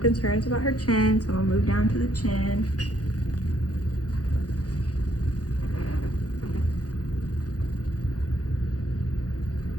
concerns about her chin, so I'm gonna move down to the chin.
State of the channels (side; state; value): right; late; 0.68 ms